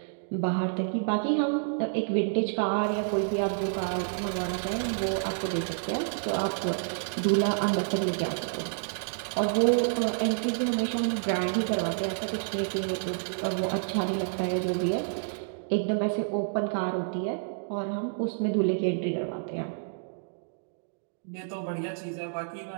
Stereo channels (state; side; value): silent; left; digital silence